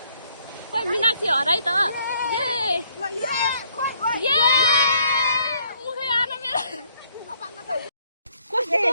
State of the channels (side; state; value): both; inverted; correlation -0.67